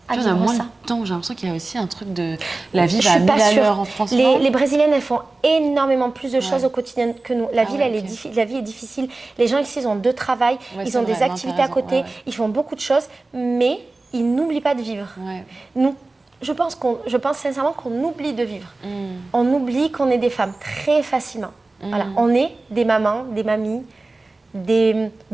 à vivre ça. Moins de temps, j'ai l'impression qu'il y a aussi un truc de... La vie va à 1000 à l'heure en France. Les Brésiliennes, elles font énormément plus de choses au quotidien que nous. La vie est difficile. Les gens ici, ils ont 2 travails, ils ont des activités à côté, ils font beaucoup de choses, mais ils n'oublient pas de vivre. Nous, je pense sincèrement qu'on oublie de vivre. On oublie qu'on est des femmes très facilement. Voilà. On est des mamans, des mamies, des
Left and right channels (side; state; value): left; quieter; 3.2 dB